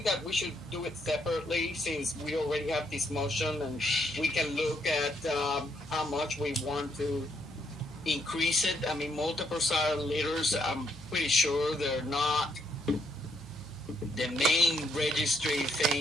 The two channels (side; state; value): both; normal; correlation 0.74